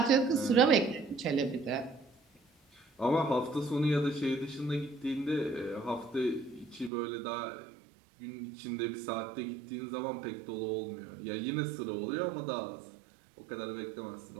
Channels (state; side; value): drops out; left; at 6.9 s